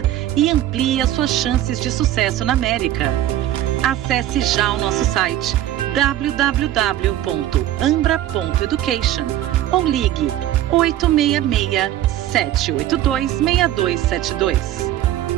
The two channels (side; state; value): left; quieter; 13.1 dB